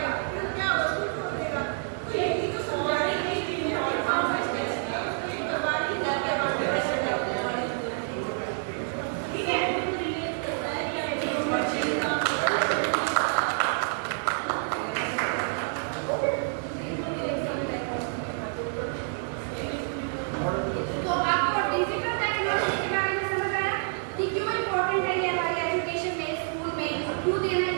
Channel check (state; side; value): silent; left; 59 dB below the other